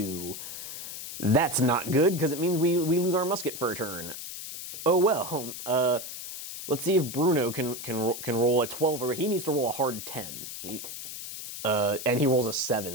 That's not good, because it means we lose our musket for a turn. Oh well. Let's see if Bruno can roll a 12, or he needs to roll a hard 10. And he rolls a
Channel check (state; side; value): noise; left; hiss, 9 dB below the sound